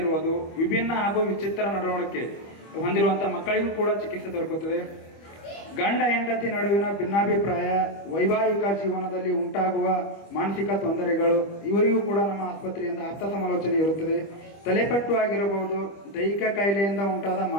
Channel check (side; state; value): right; late; 25 ms